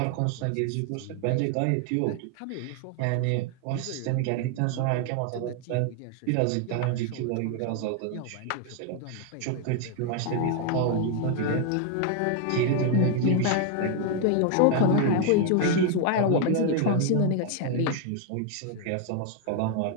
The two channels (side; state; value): both; different; correlation 0.00